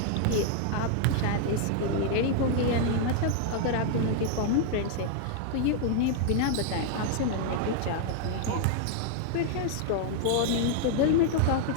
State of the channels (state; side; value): different; both; correlation 0.00